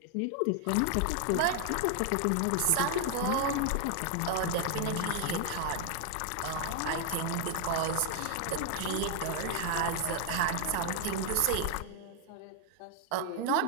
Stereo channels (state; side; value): different; both; correlation 0.00